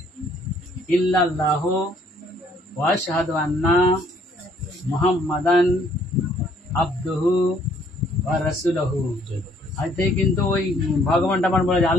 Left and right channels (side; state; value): both; normal; correlation 0.63